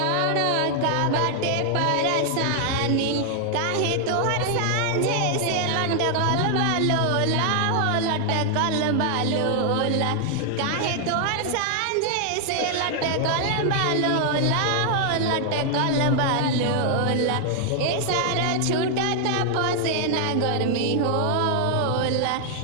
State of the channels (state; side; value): different; both; correlation 0.00